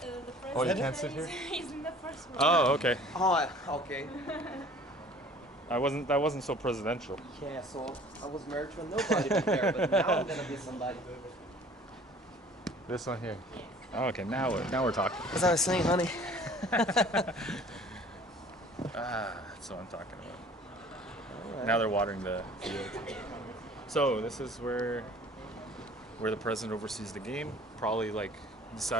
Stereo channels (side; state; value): both; normal; correlation 0.50